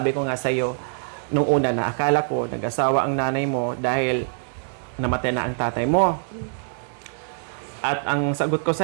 ko nga sa'yo, nung una na akala ko nag-asawa ang nanay mo dahil namatay na ang tatay mo. At ang sagot ko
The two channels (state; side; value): silent; left; 59 dB below the other